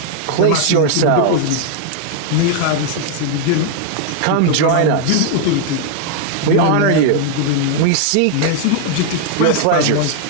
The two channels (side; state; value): both; different; correlation 0.00